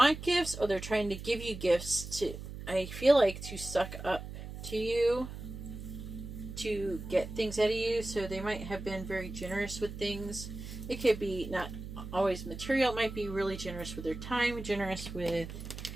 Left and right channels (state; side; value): noise; right; hum, 10 dB below the sound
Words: gifts or they're trying to give you gifts to, I feel like, to suck up to you, to get things out of you. So they might have been very generous with things. It could be not always material. It might be really generous with their time, generous with